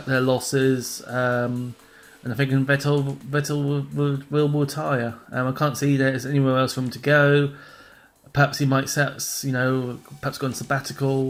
their losses, and I think Vettel will retire. I can't see there's anywhere else for him to go. Perhaps he might perhaps go on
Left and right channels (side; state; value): both; identical; correlation 1.00